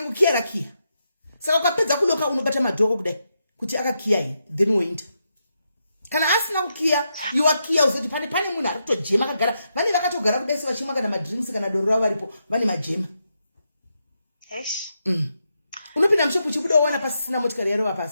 rakiya saka ukapedza kuloka unobata madhoko kudai kuti akakiya here then woinda kana asina kukiya iwakiya uzoti pane munhu ari kutojema akagara vane vakatogara kudai sevachimwa kana madrinks kana doro ravo varipo vane majema unopinda mushopu uchibuda uwana pasisina motikari yarova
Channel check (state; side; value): inverted; both; correlation -0.83